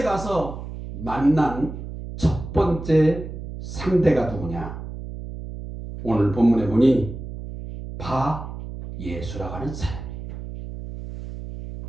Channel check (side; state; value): right; noise; hum, 9 dB below the sound